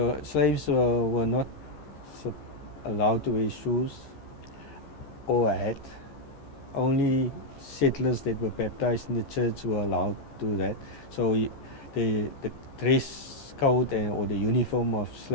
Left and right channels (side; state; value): right; late; 14 ms